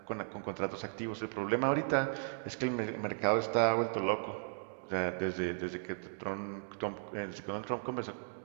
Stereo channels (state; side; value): silent; left; digital silence